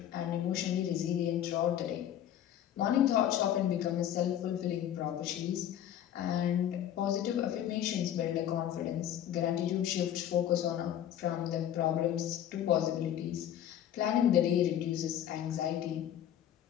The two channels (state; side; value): quieter; right; 10.8 dB